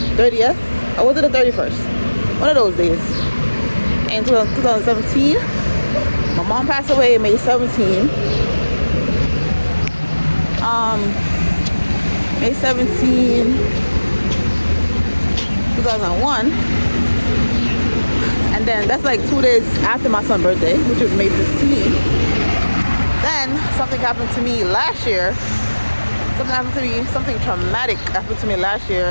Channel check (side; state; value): both; inverted; correlation -1.00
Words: Or was it the 31st? One of those days. In 2017. My mom passed away May 17th. May 17, 2001. And then that's like 2 days after my son's birthday, which was May 15th. Then something happened to me last year. Something traumatic happened to me last